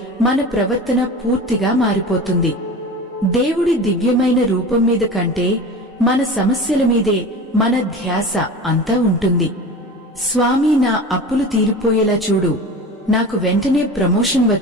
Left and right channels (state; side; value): normal; both; correlation 0.34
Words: మన ప్రవర్తన పూర్తిగా మారిపోతుంది. దేవుడి దివ్యమైన రూపం మీద కంటే మన సమస్యల మీదే మన ధ్యాస అంతా ఉంటుంది. స్వామి, నా అప్పులు తీరిపోయేలా చూడు, నాకు వెంటనే ప్రమోషన్